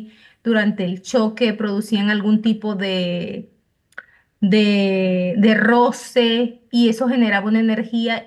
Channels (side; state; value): both; identical; correlation 1.00